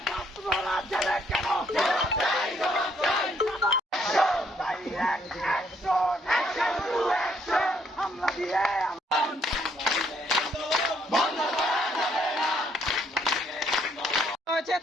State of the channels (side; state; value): both; normal; correlation 0.69